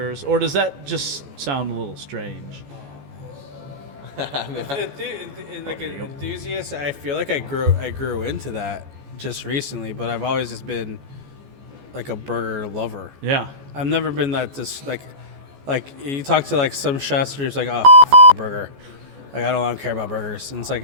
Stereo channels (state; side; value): late; left; 14 ms